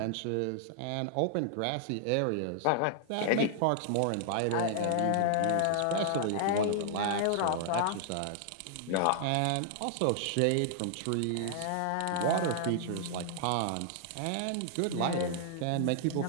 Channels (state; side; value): different; both; correlation -0.01